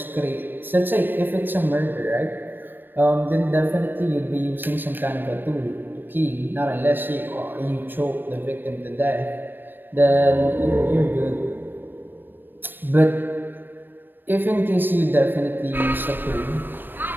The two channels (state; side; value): late; left; 0.094 ms